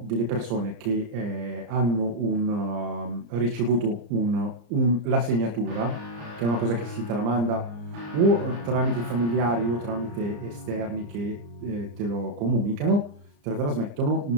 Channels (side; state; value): left; late; 34 ms